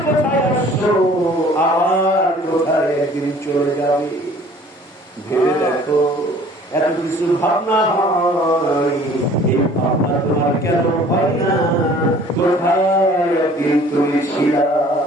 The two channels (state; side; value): normal; both; correlation 0.51